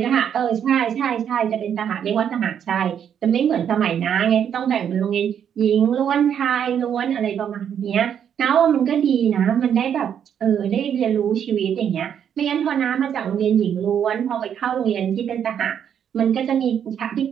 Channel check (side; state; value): left; quieter; 8.7 dB